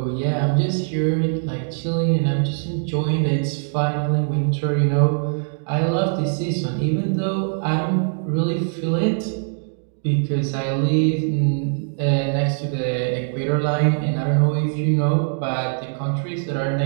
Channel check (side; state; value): left; silent; digital silence